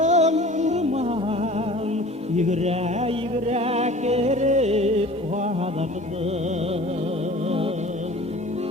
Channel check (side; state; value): both; normal; correlation 0.44